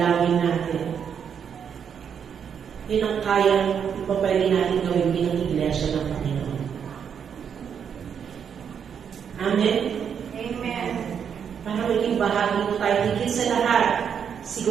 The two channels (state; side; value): quieter; left; 7.6 dB